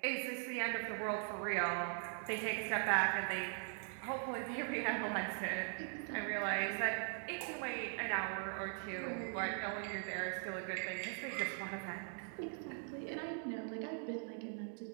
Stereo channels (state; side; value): silent; left; 50 dB below the other